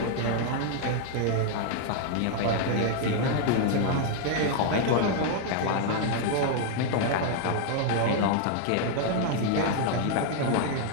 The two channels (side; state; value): both; different; correlation 0.00